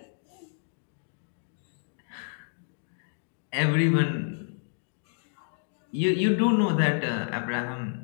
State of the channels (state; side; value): silent; right; digital silence